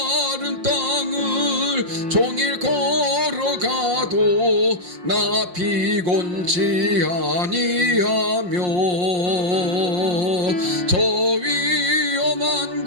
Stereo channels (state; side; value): late; left; 5.6 ms